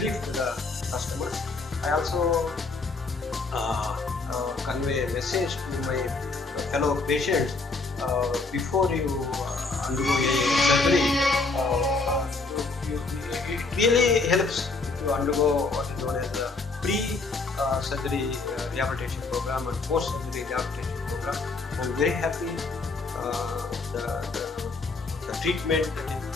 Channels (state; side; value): quieter; right; 3.8 dB